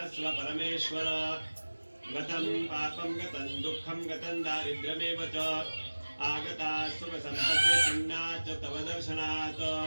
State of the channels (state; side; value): inverted; both; correlation -1.00